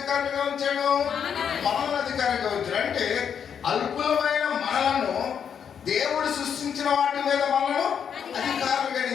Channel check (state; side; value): quieter; right; 7.7 dB